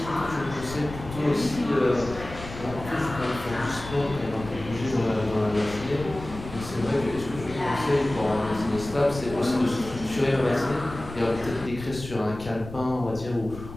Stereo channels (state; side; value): noise; left; rumble, 12 dB below the sound